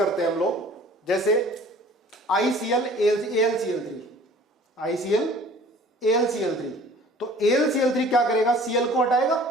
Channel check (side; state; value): both; normal; correlation 0.49